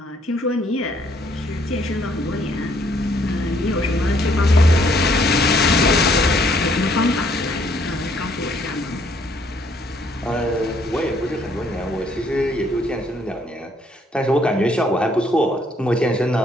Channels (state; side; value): normal; both; correlation 0.66